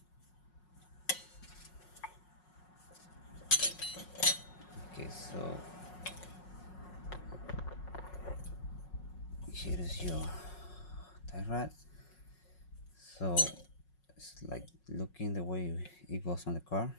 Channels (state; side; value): late; right; 5.5 ms